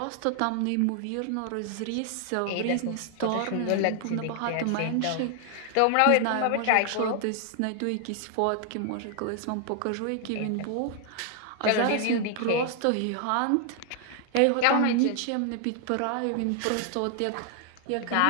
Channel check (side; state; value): both; different; correlation 0.00